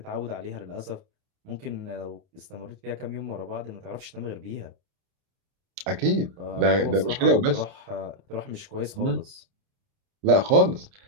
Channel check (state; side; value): late; left; 29 ms